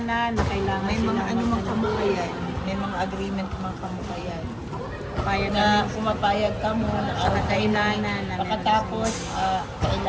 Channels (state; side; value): identical; both; correlation 1.00